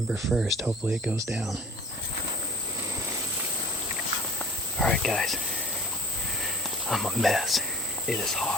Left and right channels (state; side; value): normal; both; correlation 0.47